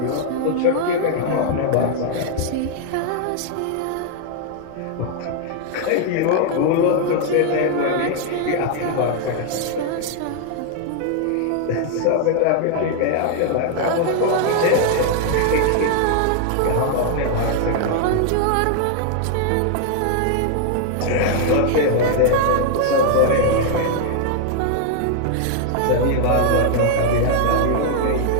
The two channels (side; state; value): both; different; correlation 0.00